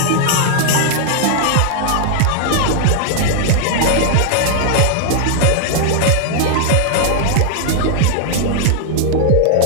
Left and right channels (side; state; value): both; different; correlation 0.00